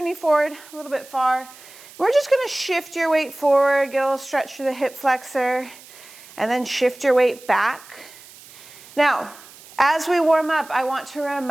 forward a little bit far. We're just going to shift your weight forward, get a little stretch through the hip flexor, and then shift your weight back. Now, as we warm up, I want to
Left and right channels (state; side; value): noise; right; hiss, 21 dB below the sound